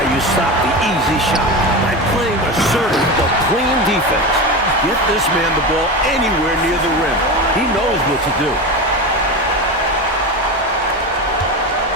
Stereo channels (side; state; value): both; normal; correlation 0.23